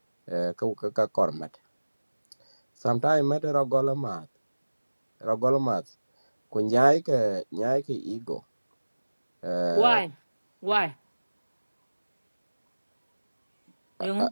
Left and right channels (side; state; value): both; inverted; correlation -1.00